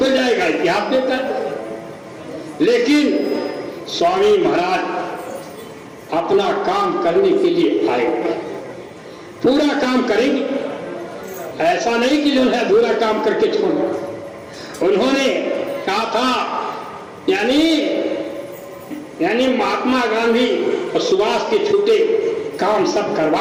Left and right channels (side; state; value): both; identical; correlation 1.00